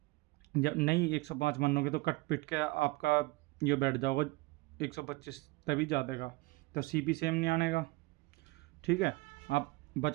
जब नहीं 105 मानोगे तो कट पिट के आपका ये बैठ जाओगा 125, तभी जादेगा, तो सीपी सेम नहीं आनेगा। ठीक है। आप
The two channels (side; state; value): left; quieter; 23.1 dB